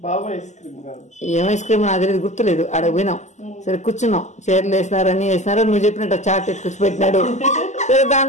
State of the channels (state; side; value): late; right; 0.34 ms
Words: ఏం ఐస్ క్రీమ్ నాకు తెలియదు, గుర్తులేదు. ఆడ పోయినాం, సరే కూర్చున్నాం, చైర్లు వేసినారు, అన్ని వేసినారు. నువ్వు చెప్పినట్టు చాట్ ఎత్తుకొచ్చి పెట్టినాడు. సరే